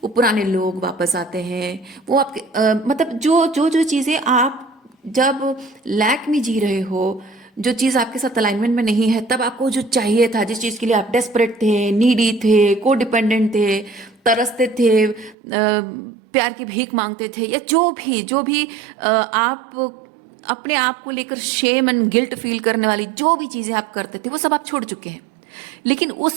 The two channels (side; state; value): left; drops out; at 15.4 s